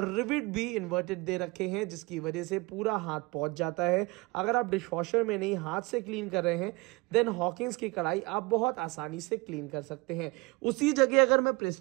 रिविट भी इन्वर्टेड दे रखे हैं, जिसकी वजह से पूरा हाथ पहुंच जाता है। अगर आप डिशवॉशर में नहीं हाथ से क्लीन कर रहे हैं देन हॉकिंस की कढ़ाई आप बहुत आसानी से क्लीन कर सकते हैं। उसी जगह अगर मैं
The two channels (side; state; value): left; quieter; 25.0 dB